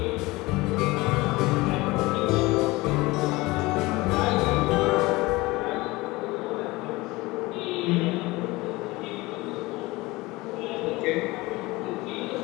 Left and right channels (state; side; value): quieter; right; 21.5 dB